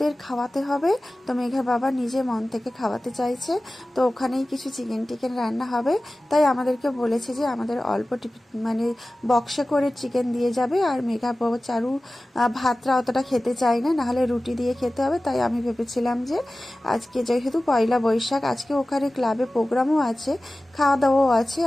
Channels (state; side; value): normal; both; correlation 0.96